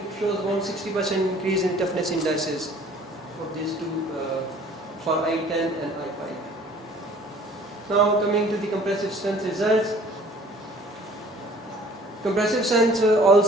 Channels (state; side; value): normal; both; correlation 0.52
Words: shows about 60% increase in toughness indices for these two, for I10 and I5. Now coming to the compressive strength results. Compressive strength